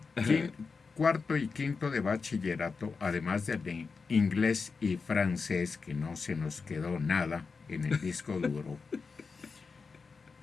cuarto y quinto de bachillerato, además de inglés y francés, que no se nos quedó nada en el disco duro,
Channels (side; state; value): right; quieter; 4.8 dB